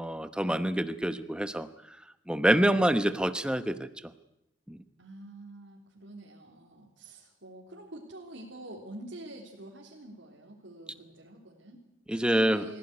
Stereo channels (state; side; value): normal; both; correlation 0.90